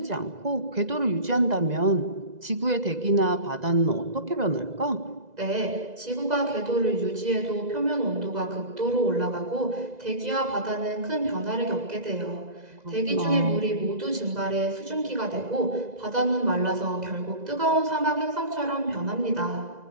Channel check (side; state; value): left; late; 2.0 ms